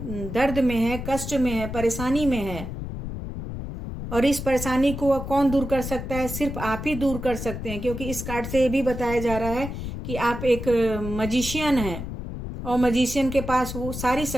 दर्द में है, कष्ट में है, परेशानी में है। और इस परेशानी को कौन दूर कर सकता है? सिर्फ आप ही दूर कर सकते हैं, क्योंकि इस कार्ड से ये भी बताया जा रहा है कि आप एक मजिशियन हैं, और मजिशियन के पास वो सारी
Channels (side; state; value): left; noise; rumble, 7 dB below the sound